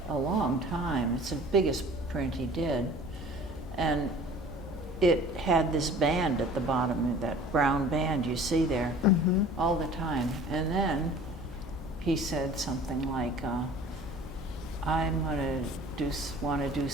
a long time. It's the biggest print he did. And it had this band at the bottom, that brown band you see there, Mhm. all the time. And then he said something like, I'm going to want to do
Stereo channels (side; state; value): left; noise; hum, 14 dB below the sound